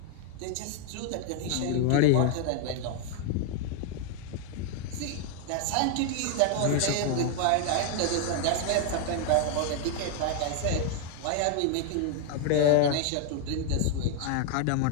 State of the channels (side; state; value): both; different; correlation 0.00